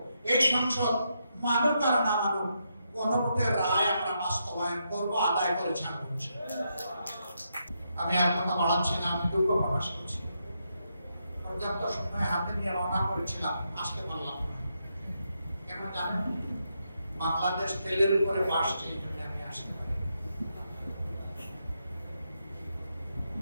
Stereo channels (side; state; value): both; inverted; correlation -0.81